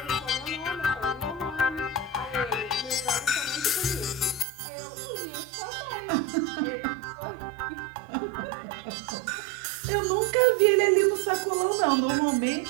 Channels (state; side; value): drops out; left; at 4.5 s